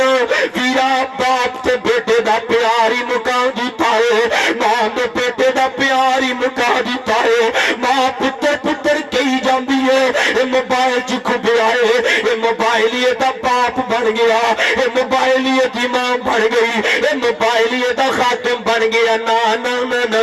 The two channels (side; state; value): both; identical; correlation 1.00